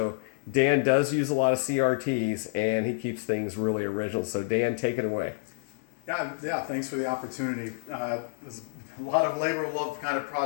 Dan does use a lot of CRTs, and he keeps things really original. So Dan, take it away. Yeah. Thanks for the opportunity. There's a lot of labor of love kind of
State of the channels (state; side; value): silent; right; 59 dB below the other